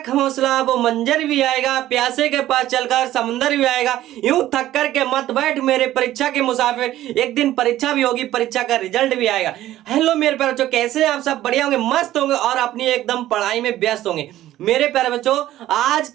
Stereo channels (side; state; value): left; quieter; 14.0 dB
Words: हौसला वो मंजर भी आएगा, प्यासे के पास चलकर समुंदर भी आएगा। यूं थक कर के मत बैठ मेरे परीक्षा के मुसाफिर, एक दिन परीक्षा भी होगी, परीक्षा का रिजल्ट भी आएगा। हेलो मेरे प्यारे बच्चों, कैसे हैं आप सब? बढ़िया होंगे, मस्त होंगे और अपनी एकदम पढ़ाई में व्यस्त होंगे। मेरे प्यारे बच्चों, आज